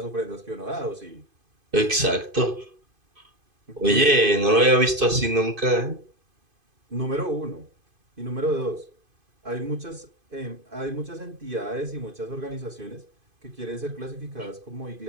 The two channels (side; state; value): left; late; 2.5 ms